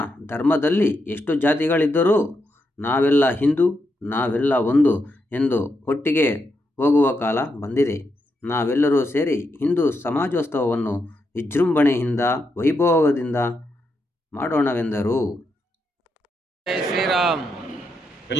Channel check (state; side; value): normal; both; correlation 0.83